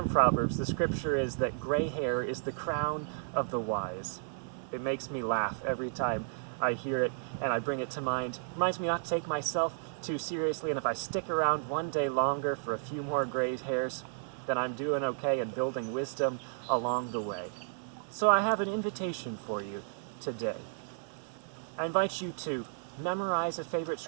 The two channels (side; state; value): left; silent; 56 dB below the other